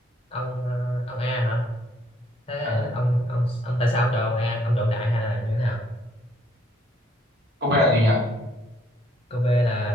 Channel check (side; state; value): both; normal; correlation 0.67